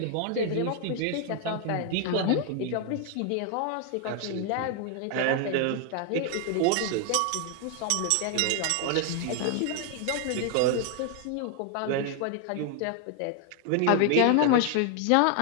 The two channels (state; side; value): different; both; correlation 0.00